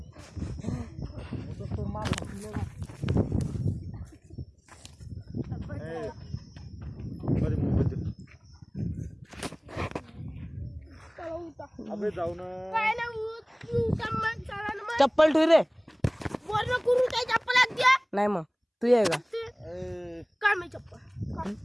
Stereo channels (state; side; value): identical; both; correlation 1.00